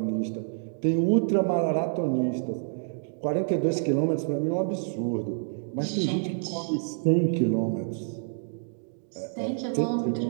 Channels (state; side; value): silent; left; digital silence